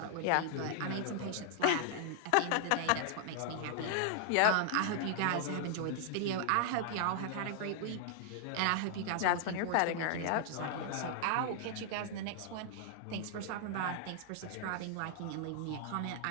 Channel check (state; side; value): different; both; correlation 0.00